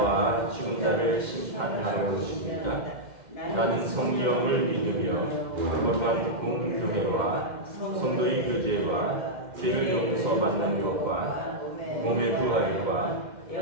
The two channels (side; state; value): left; late; 2.1 ms